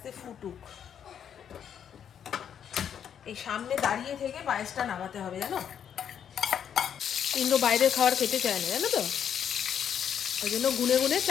ফুটুক। এই সামনে দাঁড়িয়ে থেকে পায়েসটা নামাতে হবে, জানো। ইন্দ্র বাইরের খাবার খেতে চায় না, জানো তো। ওই জন্য গুনে গুনে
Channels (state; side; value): quieter; right; 8.6 dB